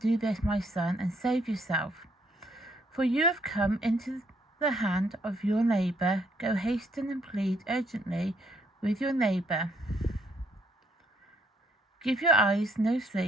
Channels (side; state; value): both; normal; correlation 0.70